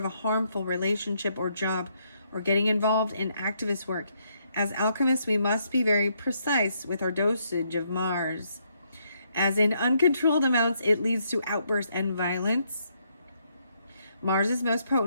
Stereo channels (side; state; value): both; inverted; correlation -0.74